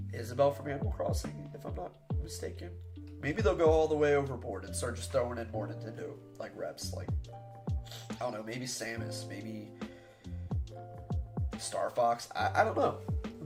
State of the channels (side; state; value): both; identical; correlation 1.00